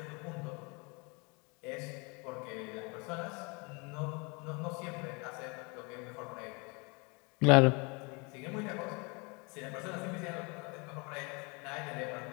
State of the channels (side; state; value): right; quieter; 30.4 dB